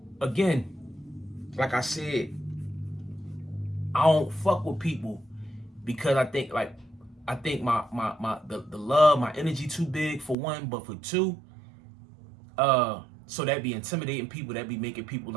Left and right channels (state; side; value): drops out; left; at 10.4 s